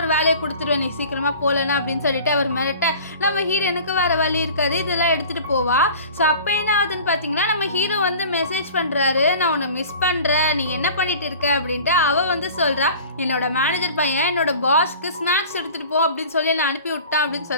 வேலையை கொடுத்துருவேன் நீ சீக்கிரமாக போகலன்னா அப்படின்னு சொல்லிட்டு அவர் மிரட்ட, நம்ம ஹீரோனுக்கு வேறு வழி இருக்காது, இதெல்லாம் எடுத்துகிட்டு போவா. ஸோ அப்போ என்ன ஆகுதுன்னு பார்த்தீங்கன்னா, நம்ம ஹீரோ வந்து மெசேஜ் பண்ணுறாரு, நான் உன்னை மிஸ் பண்ணுறேன், நீ என்ன பண்ணிட்டு இருக்க அப்படின்ட்டு. அவள் வந்து சொல்கிறா, என்னோட மேனேஜர் பையன் என்னோட பாஸ்க்கு ஸ்நாக்ஸ் எடுத்துகிட்டு போ அப்படின்னு சொல்லி நான் அனுப்பி விட்டான் அப்படின்னு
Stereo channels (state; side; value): inverted; both; correlation -0.42